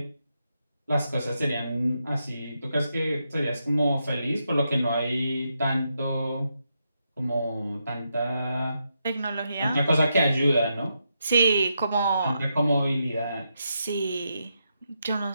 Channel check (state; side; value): inverted; both; correlation -0.83